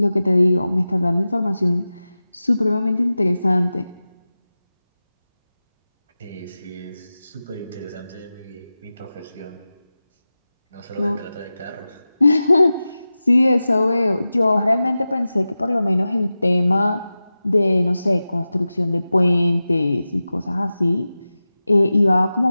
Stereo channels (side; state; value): both; inverted; correlation -0.95